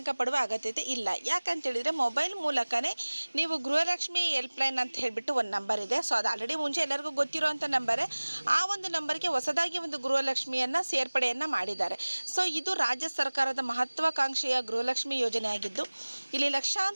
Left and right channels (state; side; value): inverted; both; correlation -1.00